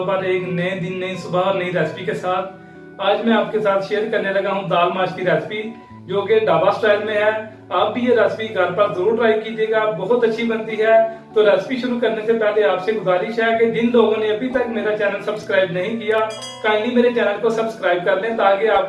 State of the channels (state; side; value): identical; both; correlation 1.00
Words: पर एक नए दिन, नई सुबह और नई रेसिपी के साथ। आज मैं आपके साथ शेयर करने लगा हूं दाल माश की रेसिपी, जो कि ढाबा स्टाइल में है। आप भी ये रेसिपी घर पर जरूर ट्राई कीजिएगा, बहुत अच्छी बनती है। तो रेसिपी शुरू करने से पहले आपसे गुजारिश है कि जिन लोगों ने अभी तक मेरा चैनल सब्सक्राइब नहीं किया, काइंडली मेरे चैनल को सब्सक्राइब कर लें, ताकि